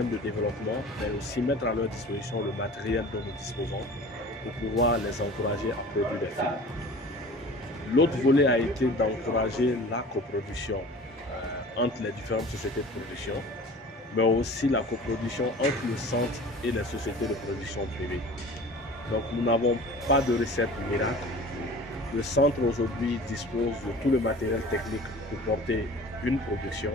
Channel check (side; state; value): both; normal; correlation 0.41